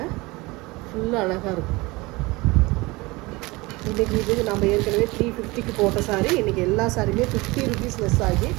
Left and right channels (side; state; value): left; quieter; 23.0 dB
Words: ஃபுல்லாக அழகாக இருக்கும். இன்றைக்கி இது நம்ம ஏற்கனவே 350க்கு போட்ட சாரீ. இன்றைக்கி எல்லா சாரியுமே 50 ருபீஸ் லெஸ் ஆகி